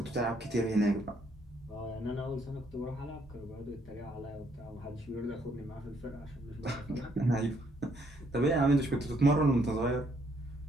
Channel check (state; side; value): normal; both; correlation 0.69